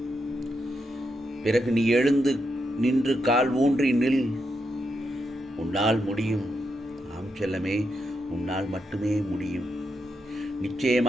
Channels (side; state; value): both; normal; correlation 0.83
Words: பிறகு நீ எழுந்து நின்று கால் ஊன்றி நில். உன்னால் முடியும். ஆம் செல்லமே, உன்னால் மட்டுமே முடியும்.